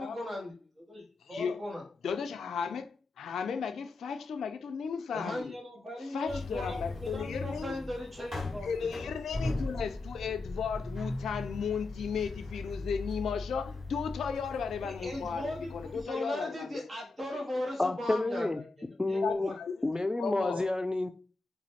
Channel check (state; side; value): quieter; right; 3.5 dB